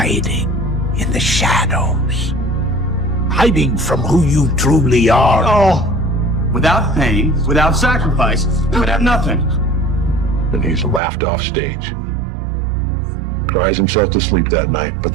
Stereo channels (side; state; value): left; drops out; at 11.0 s